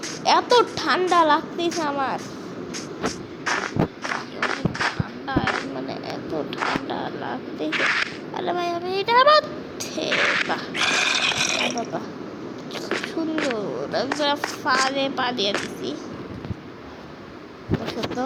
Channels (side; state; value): both; identical; correlation 1.00